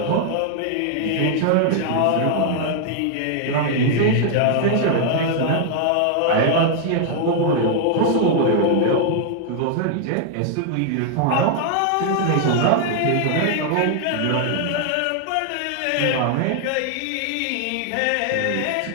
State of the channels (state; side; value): different; both; correlation 0.00